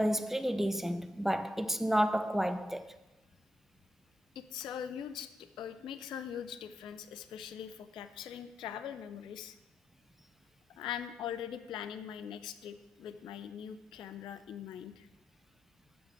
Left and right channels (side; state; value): both; normal; correlation 0.85